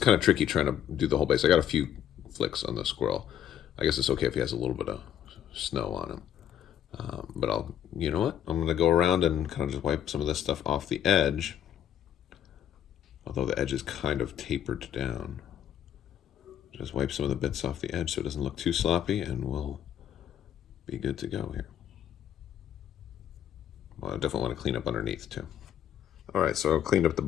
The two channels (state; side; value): quieter; right; 9.9 dB